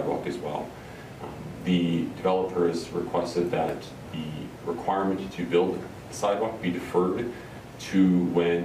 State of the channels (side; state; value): both; identical; correlation 1.00